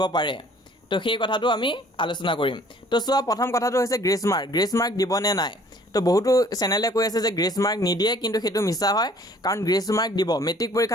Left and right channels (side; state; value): both; normal; correlation 0.55